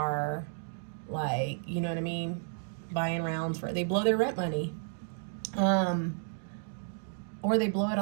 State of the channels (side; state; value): left; silent; digital silence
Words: like, you know what I mean, buying rounds for, they blow their rent money. Or they blow it